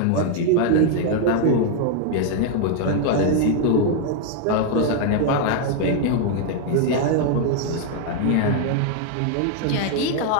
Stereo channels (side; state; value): both; different; correlation 0.00